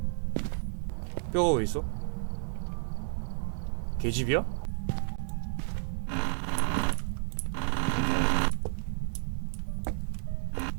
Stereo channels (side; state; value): left; silent; digital silence